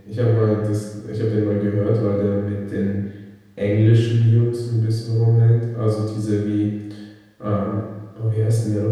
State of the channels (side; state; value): both; identical; correlation 1.00